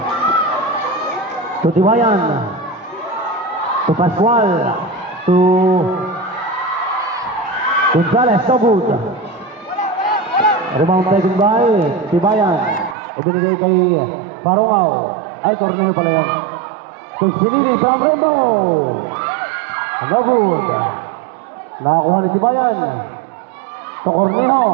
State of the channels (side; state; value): left; drops out; at 13.0 s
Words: To Tibayan. To Pascual. To Gonzales. So good. Rebound taken by Tibayan. Ibinigay kay Parawaw. Ay, Cornejo pala yan. To Espinili from Remo. No good. Nakakuha ni Tibayan. To Cornejo.